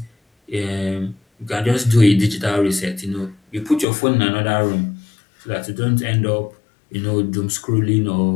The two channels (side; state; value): right; drops out; at 3.9 s